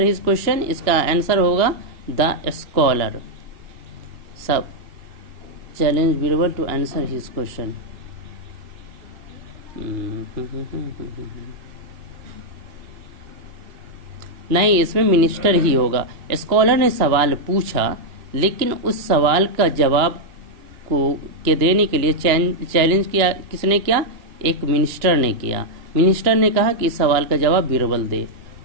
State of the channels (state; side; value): late; left; 2.9 ms